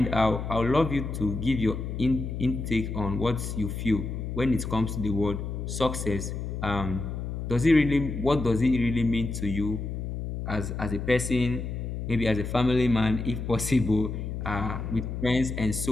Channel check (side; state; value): left; noise; hum, 5 dB below the sound